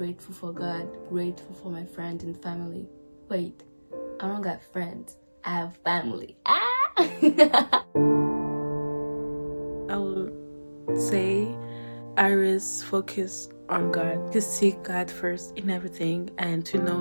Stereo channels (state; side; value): inverted; both; correlation -1.00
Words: for God, grateful for my friends and family. Wait, I don't got friends, I have family. I would say Iris focus on God. Just seek God first in everything, and to